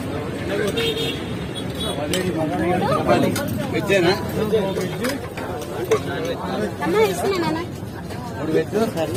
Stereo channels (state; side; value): identical; both; correlation 1.00